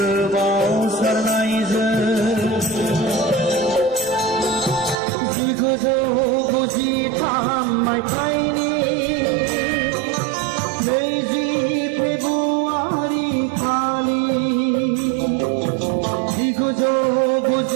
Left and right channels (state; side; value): drops out; left; at 5.0 s